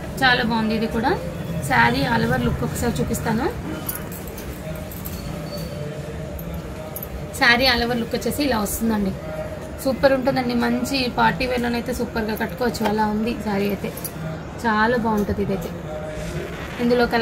చాలా బాగుంది. ఇది కూడా శారీ ఆల్ ఓవర్ లుక్ ఒకసారి చూపిస్తాను. శారీ ఆల్ ఓవర్ లుక్ వచ్చేసి ఇలా వస్తుందండి. సూపర్ ఉంటుందండి. మంచి పార్టీ వేర్లోనైతే సూపర్గా కట్టుకోవచ్చు. అలా ఉంది శారీ అయితే. చాలా బాగుంటుంది ఇదైతే. ఇందులో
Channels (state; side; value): identical; both; correlation 1.00